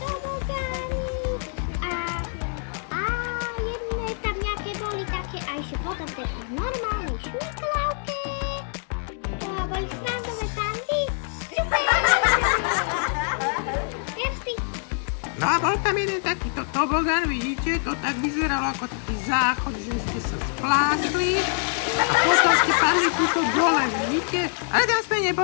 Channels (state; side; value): silent; right; 56 dB below the other